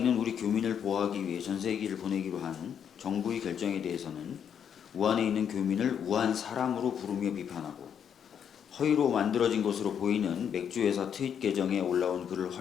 우리 교민을 보호하기 위해 전세기를 보내기로 한 정부의 결정에 대해서는 우한에 있는 교민을 우한 사람으로 부르며 비판하고 허위로 만들어진 것으로 보이는 맥주회사 트윗 계정에 올라온 글을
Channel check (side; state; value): right; quieter; 8.2 dB